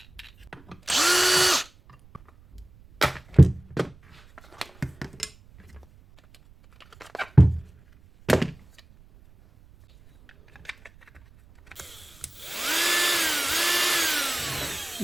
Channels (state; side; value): noise; right; rumble, 27 dB below the sound